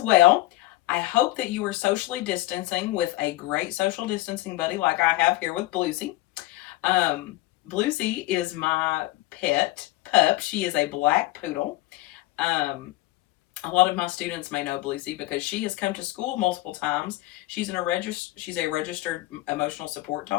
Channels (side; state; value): right; quieter; 18.2 dB